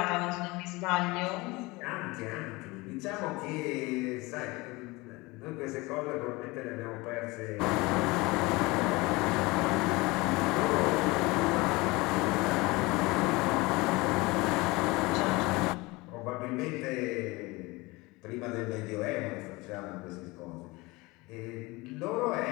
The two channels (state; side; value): quieter; right; 23.2 dB